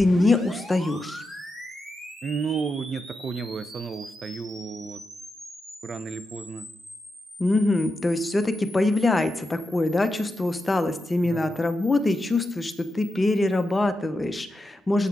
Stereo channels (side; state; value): both; normal; correlation 0.88